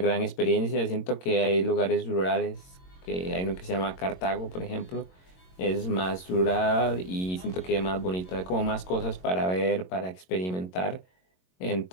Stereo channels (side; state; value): right; late; 22 ms